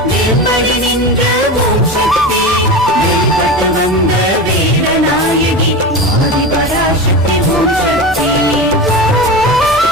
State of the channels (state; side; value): normal; both; correlation 0.25